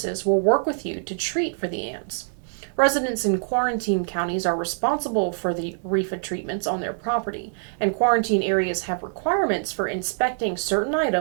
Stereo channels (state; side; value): silent; left; digital silence